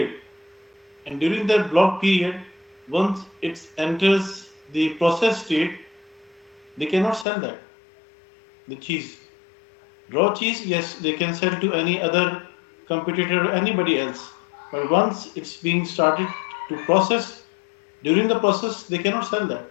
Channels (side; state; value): right; drops out; at 7.2 s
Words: and during that blocked period, once it enters the process state, they cannot sell that the cheese. Raw cheese, yes, they can sell to any other competitor or anybody else. But once it's being started to process, during the process, they cannot sell that.